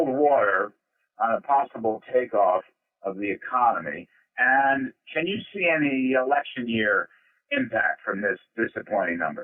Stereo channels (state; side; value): identical; both; correlation 1.00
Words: water on a possible takeoff of the economy? And can you see any election year impact from this disappointing